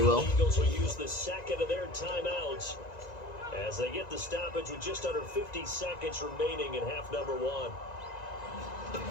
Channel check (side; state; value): right; late; 1.9 ms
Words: will. Eagles will use the second of their timeouts as they get the stoppage with just under 50 seconds remaining in half number one.